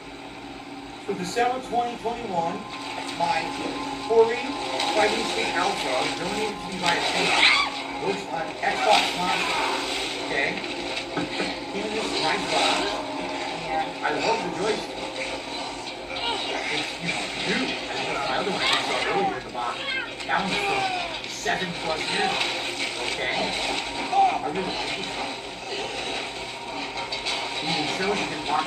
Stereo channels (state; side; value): identical; both; correlation 1.00